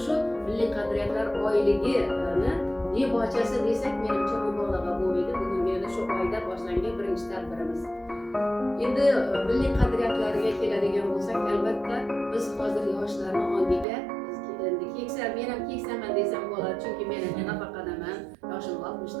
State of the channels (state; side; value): drops out; left; at 13.9 s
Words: shu milliy qadriyatlar oyligini debochasi desak menimcha mubolag'a bo'lmaydi. Bugungi shu oyda boshlangan birinchi tadbirimiz. Endi milliy qadriyatlarga keladigan bo'lsak, albatta biz hozir yoshlarning ongiga endi keksa, men ham keksaman desam bo'ladi, chunki men ham nafaqadaman, yoshim 60